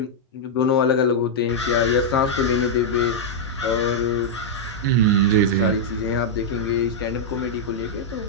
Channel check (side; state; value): both; normal; correlation -0.05